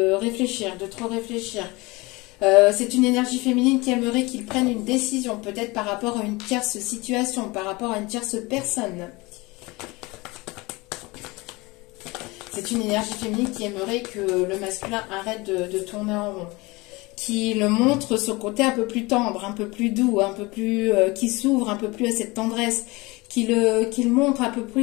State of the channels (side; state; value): right; quieter; 23.6 dB